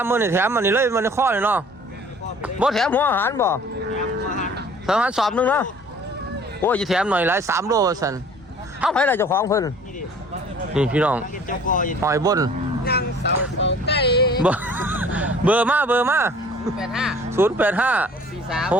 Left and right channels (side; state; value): both; normal; correlation 0.50